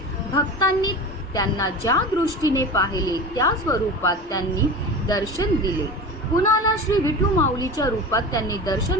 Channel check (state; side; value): normal; both; correlation 0.32